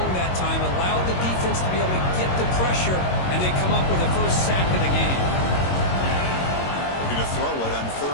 that time, allowed the defense to be able to get the pressure, and they come up with the first sack of the game. Looking to throw it on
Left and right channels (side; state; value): right; late; 22 ms